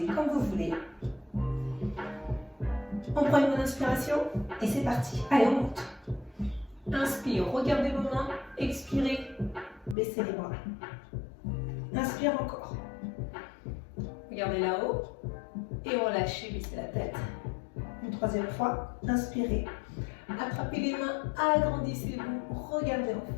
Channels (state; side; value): drops out; right; at 10.0 s